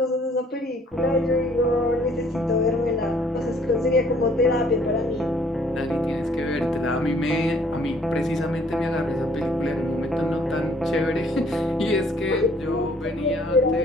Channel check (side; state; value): both; normal; correlation 0.61